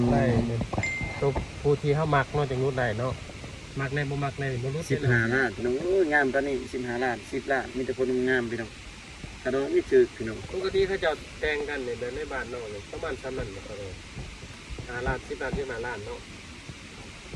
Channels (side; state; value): both; identical; correlation 1.00